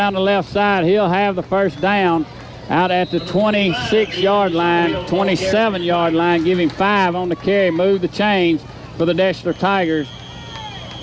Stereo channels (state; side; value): identical; both; correlation 1.00